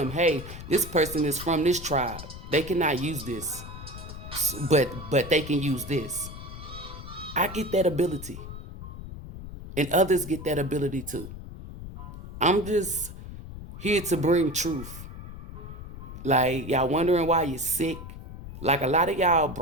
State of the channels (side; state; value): left; noise; rumble, 12 dB below the sound